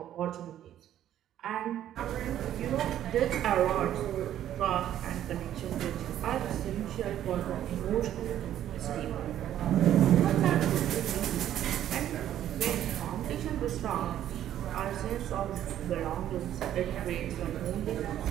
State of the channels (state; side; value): quieter; left; 11.5 dB